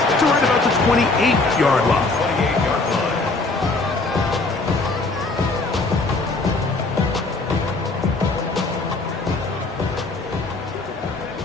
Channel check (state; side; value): quieter; right; 3.4 dB